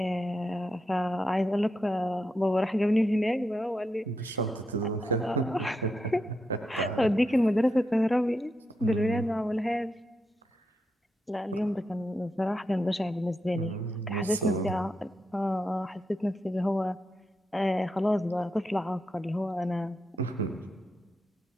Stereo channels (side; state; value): both; normal; correlation 0.84